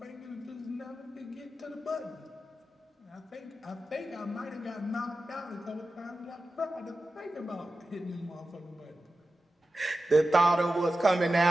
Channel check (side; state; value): both; normal; correlation 0.93